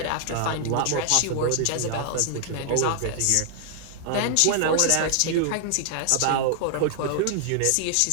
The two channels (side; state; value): both; different; correlation -0.01